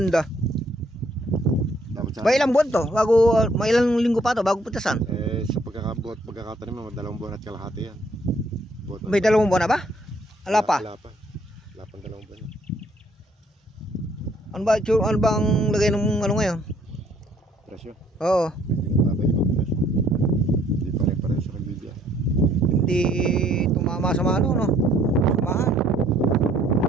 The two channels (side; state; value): both; normal; correlation 0.64